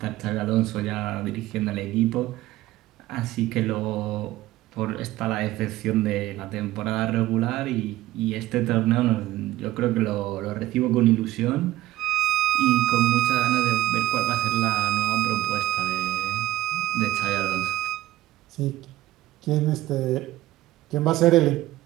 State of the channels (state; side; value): quieter; left; 15.6 dB